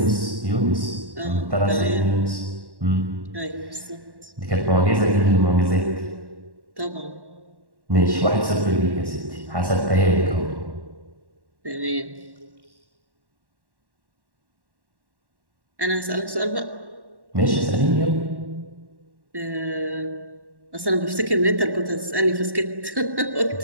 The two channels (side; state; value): left; late; 1.1 ms